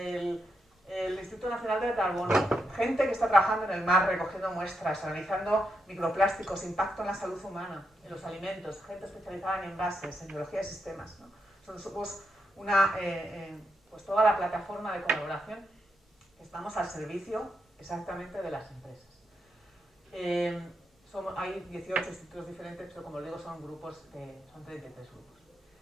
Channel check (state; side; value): normal; both; correlation 0.83